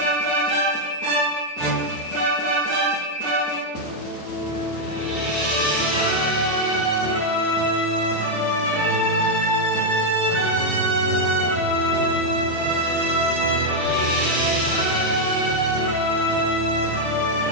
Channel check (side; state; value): left; late; 3.3 ms